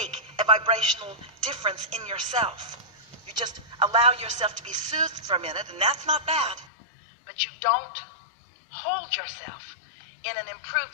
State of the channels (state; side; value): drops out; right; at 6.7 s